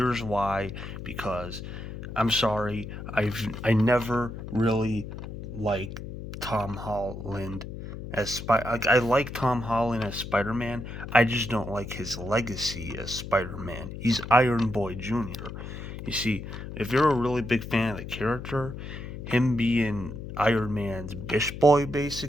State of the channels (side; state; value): left; noise; hum, 9 dB below the sound